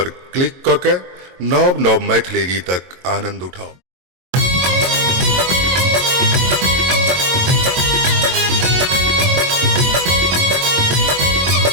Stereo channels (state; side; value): late; left; 22 ms